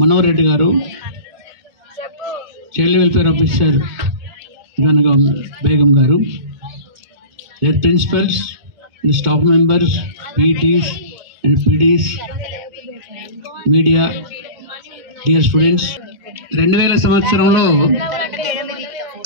మనోహర్ రెడ్డి గారు, చైల్డ్ వెల్ఫేర్ ఆఫీసర్ బేగం గారు, their principals and staff members, PTs and PDs, media, dear students. 2000 సంవత్సరంలో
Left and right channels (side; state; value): left; late; 2.1 ms